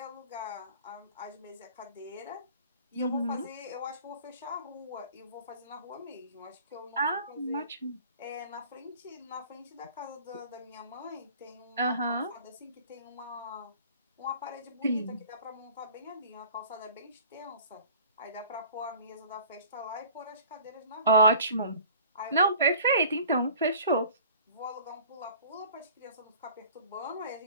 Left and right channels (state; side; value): inverted; both; correlation -0.47